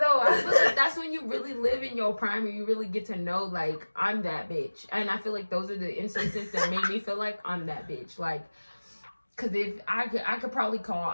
I feel like that's when you really live in your prime and you really get to know like I'm that bitch. And I feel like those are the instances that made me feel like I'm that bitch. Like, cause if I could probably call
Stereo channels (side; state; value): both; inverted; correlation -1.00